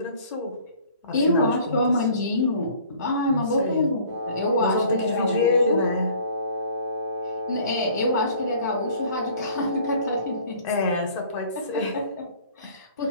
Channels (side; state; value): both; inverted; correlation -0.52